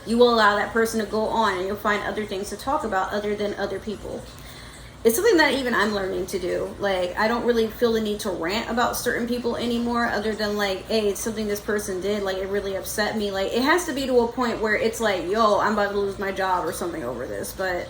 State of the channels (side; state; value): both; identical; correlation 1.00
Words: you will allow that person to go on, and you'll find other things to talk about other than other people. It's something that even I'm learning to do. Like, I don't really feel the need to rant about certain people anymore, other than like, hey, it's something this person did, like, it really upset me. Like, it has to be to a point where it's like, yo, I'm about to lose my job or something over this. But